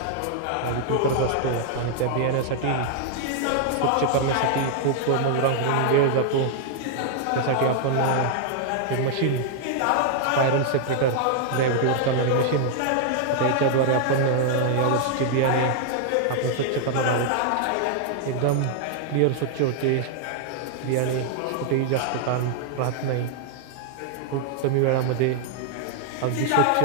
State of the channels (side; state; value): both; different; correlation 0.00